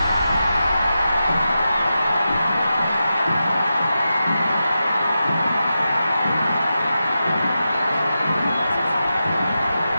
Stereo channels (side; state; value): both; inverted; correlation -0.90